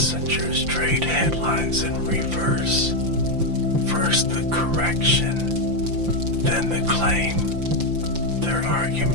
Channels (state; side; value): late; left; 5.8 ms